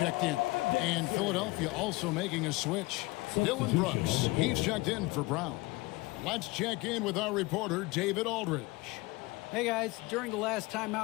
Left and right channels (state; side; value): quieter; right; 22.7 dB